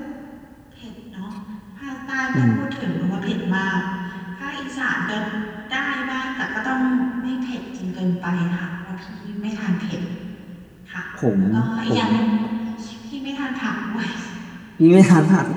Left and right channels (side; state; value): both; identical; correlation 1.00